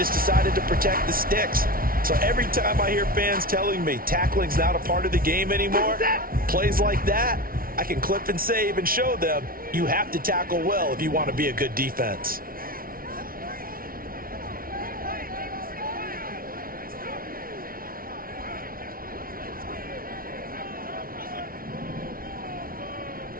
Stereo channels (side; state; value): left; late; 0.43 ms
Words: decided to protect the sticks. So every time I hear fans telling me tackling's not a part of the game anymore, plays like that, I can clip and save and show them you have to tackle well if you want to be a good defense.